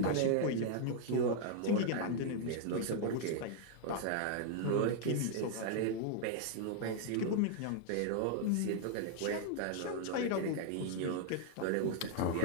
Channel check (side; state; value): both; different; correlation 0.00